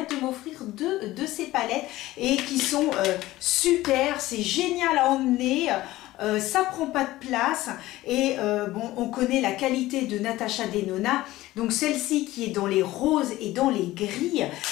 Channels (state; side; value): quieter; right; 16.9 dB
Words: m'offrir 2 de ces palettes et qui sont super. C'est génial à emmener. Ça prend pas de place et on connaît la qualité de Natasha Denona, donc celle-ci qui est dans les roses et dans les gris,